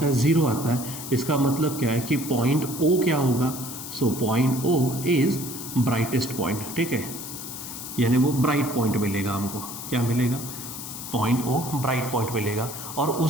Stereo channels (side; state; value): left; noise; hiss, 9 dB below the sound